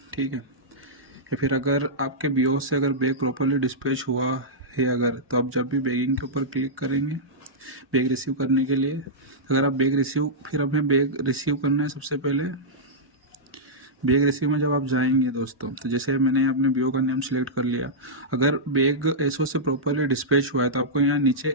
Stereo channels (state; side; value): normal; both; correlation -0.11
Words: ठीक है। या फिर अगर आपके बीओ से अगर बैग प्रॉपरली डिस्पैच हुआ है अगर, तो आप जब भी बैगिंग के ऊपर क्लिक करेंगे बैग रिसीव करने के लिए, अगर आप बैग रिसीव, फिर हमें बैग रिसीव करना है। सबसे पहले बैग रिसीव में जब आप जाएंगे दोस्तों, तो जैसे मैंने अपने बीओ का नेम सेलेक्ट कर लिया, अगर बैग एसओ से प्रॉपरली डिस्पैच हुआ है तो आपको यहाँ नीचे